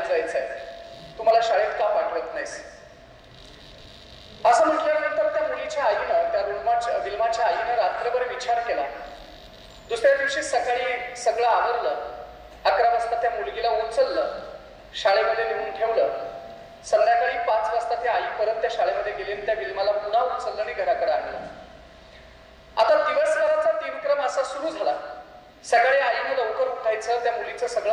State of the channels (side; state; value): both; identical; correlation 1.00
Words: जायचंय, तू मला शाळेत का पाठवत नाहीस. असं म्हटल्यानंतर त्या मुलीच्या आईनं त्या विल्माच्या आईनं रात्रभर विचार केला. दुसऱ्या दिवशी सकाळी सगळं आवरलं. 11 वाजता त्या मुलगीला उचललं, शाळेमध्ये नेऊन ठेवलं. संध्याकाळी 5 वाजता ती आई परत त्या शाळेमध्ये गेली आणि त्या विल्माला पुन्हा उचललं आणि घराकडे आणलं. आता दिवसभराचा दिनक्रम असा सुरू झाला. सकाळी आईनं लवकर उठायचं, त्या मुलीचं सगळं